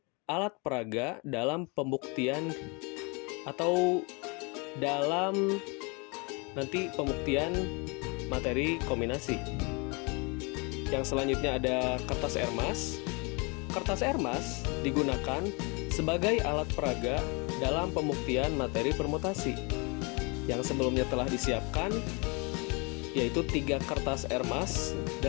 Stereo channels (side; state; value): right; quieter; 30.6 dB